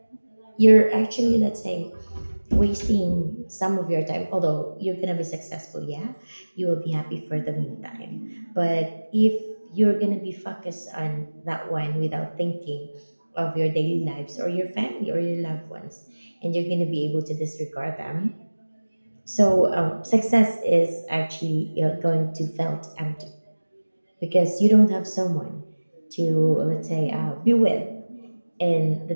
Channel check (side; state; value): both; inverted; correlation -1.00